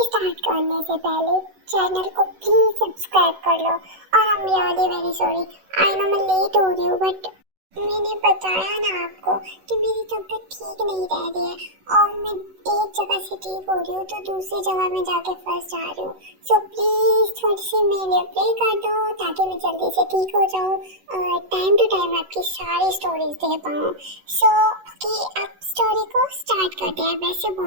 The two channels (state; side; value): late; left; 11 ms